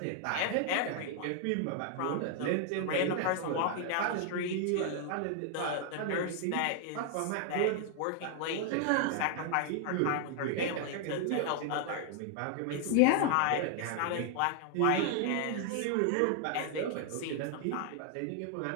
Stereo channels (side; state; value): both; different; correlation 0.00